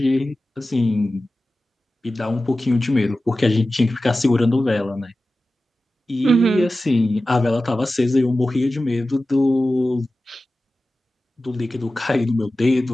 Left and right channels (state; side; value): normal; both; correlation 0.95